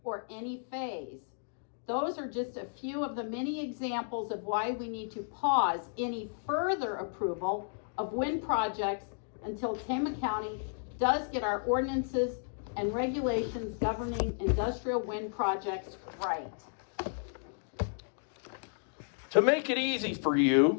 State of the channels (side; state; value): right; silent; digital silence